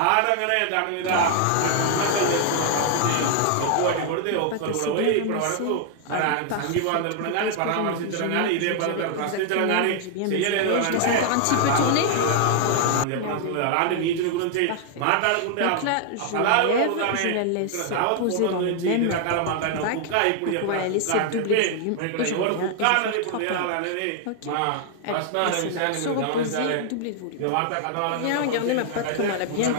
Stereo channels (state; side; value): different; both; correlation 0.00